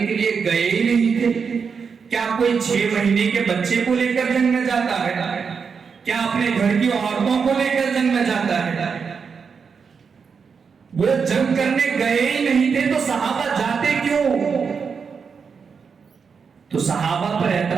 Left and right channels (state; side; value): quieter; left; 5.9 dB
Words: لیے گئے ہی نہیں تھے. کیا کوئی 6 مہینے کے بچے کو لے کر جنگ میں جاتا ہے؟ کیا اپنے گھر کی عورتوں کو لے کر جنگ میں جاتا ہے؟ وہ جنگ کرنے گئے ہی نہیں تھے تو صحابہ جاتے کیوں؟ تو صحابہ پر